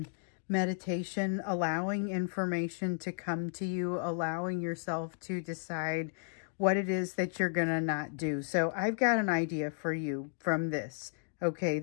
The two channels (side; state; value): right; silent; digital silence